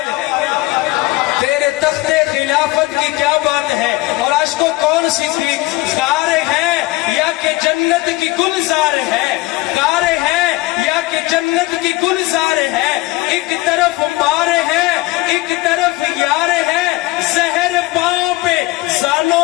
ہے، تیرے تخت خلافت کی کیا بات ہے. اور آج کو کون صدیق غار ہے یا کہ جنت کی گلزار ہے، غار ہے یا کہ جنت کی گلزار ہے. ایک طرف مار ہے ایک طرف یار ہے، زہر پاؤں پہ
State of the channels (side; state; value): right; quieter; 20.1 dB